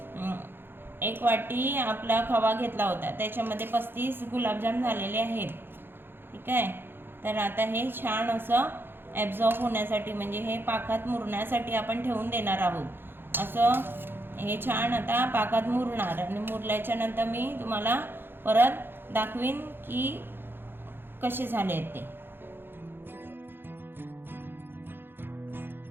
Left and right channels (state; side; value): late; left; 0.10 ms